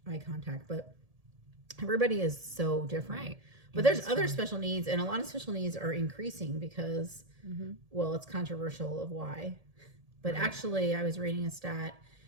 eye contact, but everybody is so different. Right. But there's other special needs, and a lot of special needs are increasing because, well, it's controversial of why. But actually, I was reading a stat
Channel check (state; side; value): late; left; 1.7 ms